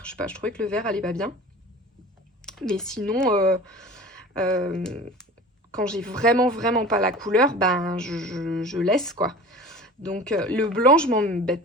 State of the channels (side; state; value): both; normal; correlation 0.39